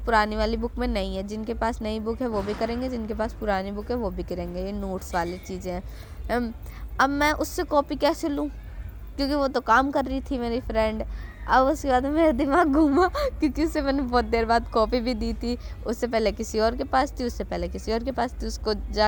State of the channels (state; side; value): identical; both; correlation 1.00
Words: वाली बुक में नहीं है, जिनके पास नई बुक है वो भी करेंगे, जिनके पास पुरानी बुक है वो भी करेंगे, ये नोट्स वाली चीज़ें हैं। अब मैं उससे कॉपी कैसे लूँ, क्योंकि वो तो काम कर रही थी मेरी फ्रेंड। अब उसके बाद मेरा दिमाग घूमा क्योंकि उससे मैंने बहुत देर बाद कॉपी भी दी थी, उससे पहले किसी और के पास थी, उससे पहले किसी और के पास थी, उसको